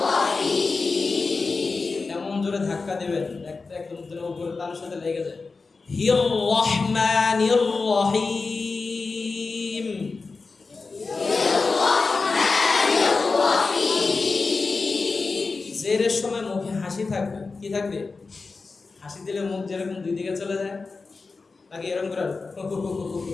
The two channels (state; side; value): quieter; right; 4.2 dB